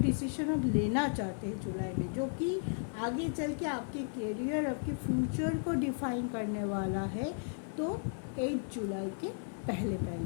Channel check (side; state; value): right; silent; digital silence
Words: आप लेना चाहते हैं जुलाई में जो कि आगे चल के आपके करियर, आपके फ्यूचर को डिफाइन करने वाला है, तो 8 जुलाई के